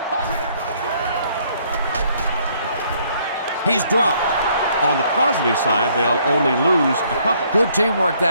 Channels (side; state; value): both; inverted; correlation -0.65